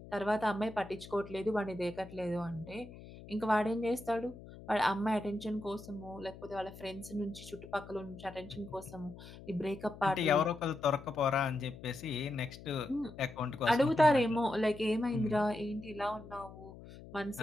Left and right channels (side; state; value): left; noise; hum, 16 dB below the sound